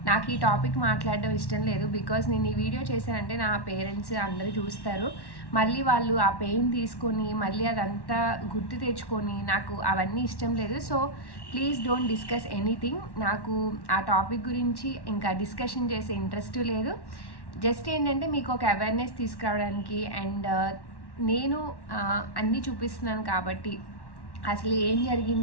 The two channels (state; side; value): late; right; 1.1 ms